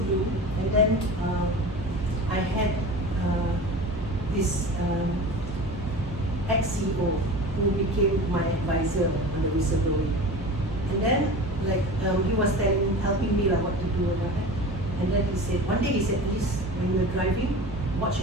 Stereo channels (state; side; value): noise; left; hum, 11 dB below the sound